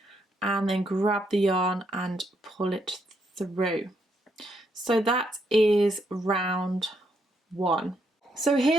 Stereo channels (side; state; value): both; normal; correlation 0.76